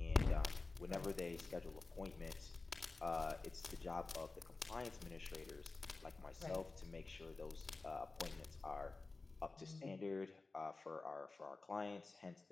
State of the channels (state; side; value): quieter; right; 3.6 dB